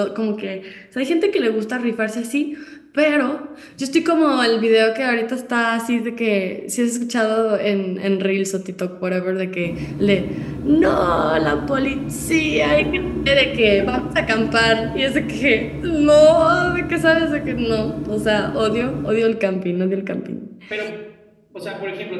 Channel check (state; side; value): identical; both; correlation 1.00